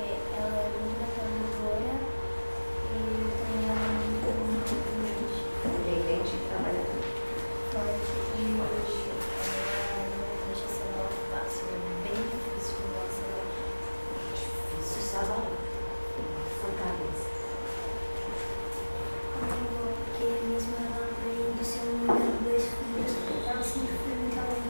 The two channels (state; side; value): inverted; both; correlation -1.00